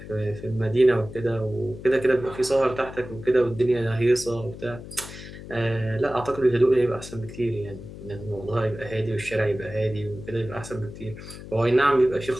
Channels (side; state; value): left; noise; hum, 13 dB below the sound